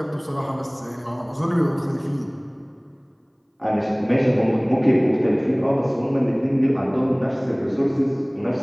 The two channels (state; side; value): identical; both; correlation 1.00